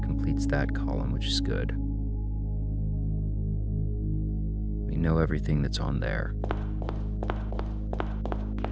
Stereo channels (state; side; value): identical; both; correlation 1.00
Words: completes that column, which is good. We know everything that's on there.